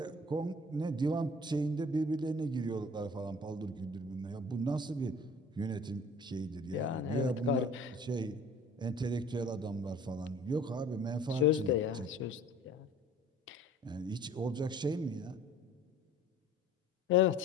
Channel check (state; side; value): normal; both; correlation 0.48